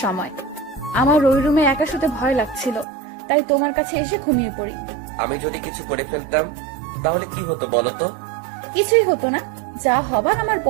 সময়। আমার ওই রুমে একা শুতে ভয় লাগছিল, তাই তোমার কাছে এসে ঘুমিয়ে পড়ি। আমি যদি কিছু করে ফেলতাম তাহলে কি হতো বলো তো? কিছুই হতো না, যা হবার আমার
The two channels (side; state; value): left; drops out; at 2.9 s